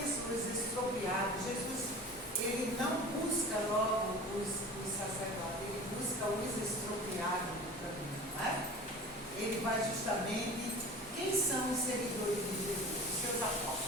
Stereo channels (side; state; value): both; normal; correlation 0.39